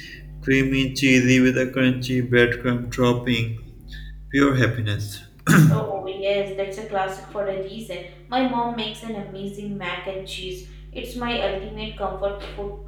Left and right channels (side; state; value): both; identical; correlation 1.00